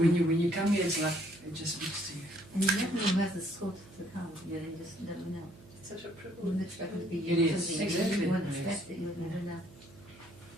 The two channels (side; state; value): right; noise; hum, 22 dB below the sound